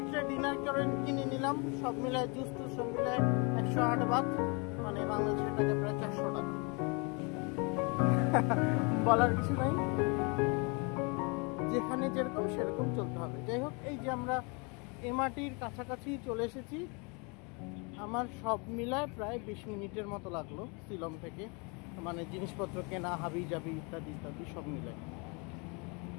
ডিনার করে কিনে নিলাম, সব মিলায় জুস টুস সব মিলায় 108 বাত, মানে বাংলাদেশের টাকা প্রায় 400 টাকা। বলার কিছু নাই, যেখানে যেরকম সেরকম চলতে হবে। যাই হোক, এই যে আমরা এমআরটির কাছাকাছি চলে এসেছি। আমার সব মিলায় প্রায় 20 মিনিটের মতো লাগলো সিলম থেকে, মানে জিনিসপত্র কেনা, হাবি জাবি ইত্যাদি ইত্যাদি সব মিলায়।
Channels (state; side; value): quieter; right; 31.9 dB